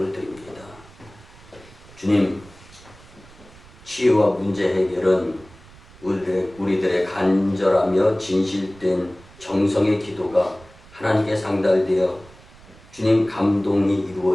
드립니다. 주님, 치유와 문제 해결은 우리들의 간절하며 진실된 정성의 기도가 하나님께 상달되어 주님 감동이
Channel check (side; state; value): right; noise; rumble, 23 dB below the sound